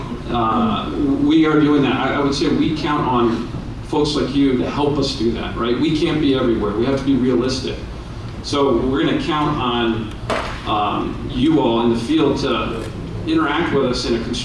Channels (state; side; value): identical; both; correlation 1.00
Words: We are doing that. I would say we count on folks like you to help us do that, right? We can't be everywhere. We have to be realistic. So we're going to count on you all in the field to interact with us in a